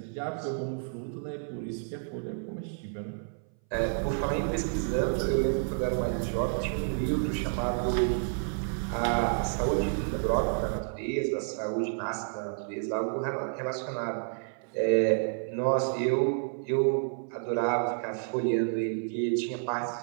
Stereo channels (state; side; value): silent; left; 58 dB below the other